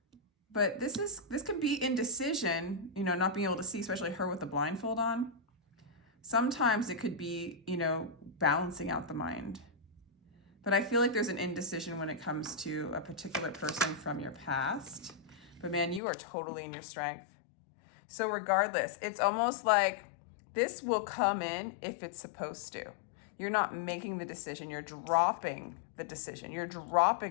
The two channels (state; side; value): drops out; right; at 16.0 s